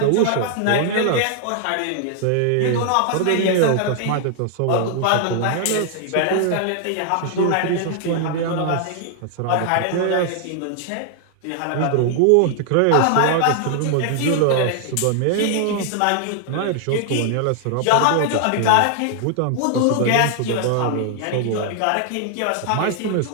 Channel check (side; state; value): both; different; correlation 0.00